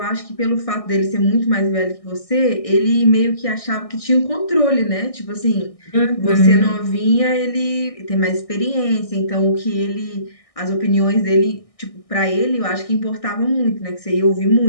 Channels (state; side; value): late; right; 1.6 ms